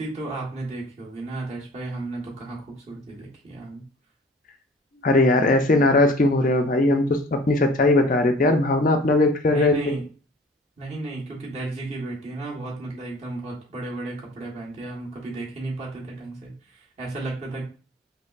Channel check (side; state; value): both; normal; correlation 0.47